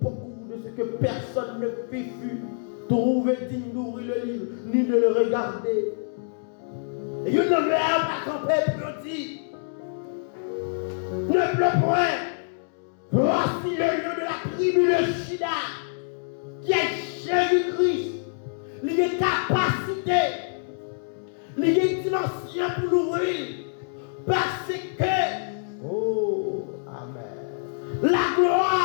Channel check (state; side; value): silent; right; digital silence